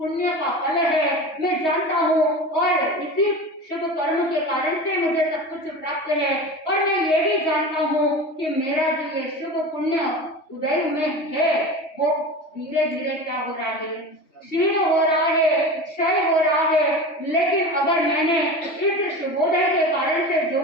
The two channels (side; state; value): right; late; 3.2 ms